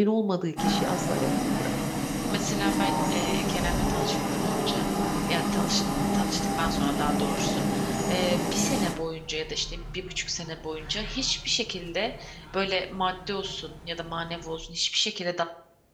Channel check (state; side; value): identical; both; correlation 1.00